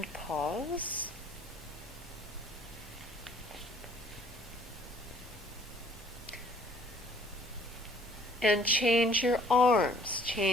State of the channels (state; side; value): normal; both; correlation 0.57